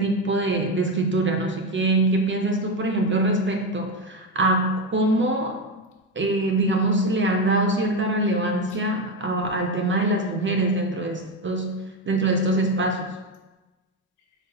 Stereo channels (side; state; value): both; normal; correlation 0.13